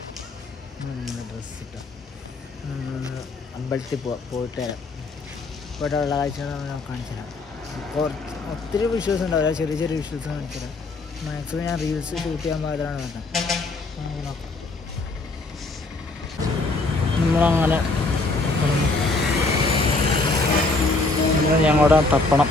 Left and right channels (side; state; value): right; quieter; 3.4 dB